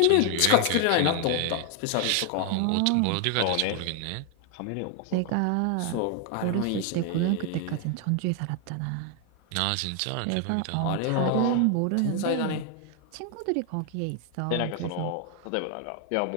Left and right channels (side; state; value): both; different; correlation 0.00